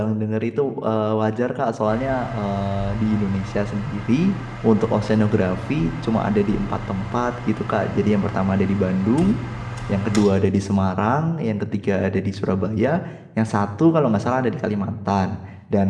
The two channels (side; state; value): both; identical; correlation 1.00